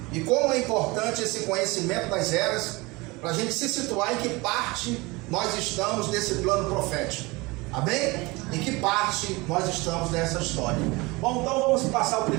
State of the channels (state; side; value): quieter; left; 23.8 dB